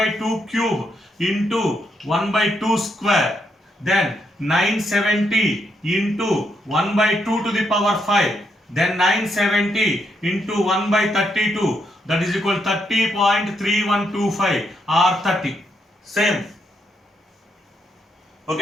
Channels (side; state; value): both; normal; correlation 0.78